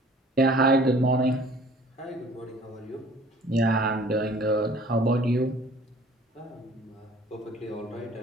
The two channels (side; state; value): both; normal; correlation 0.51